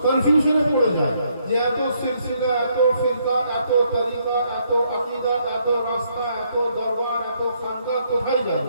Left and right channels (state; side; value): inverted; both; correlation -0.72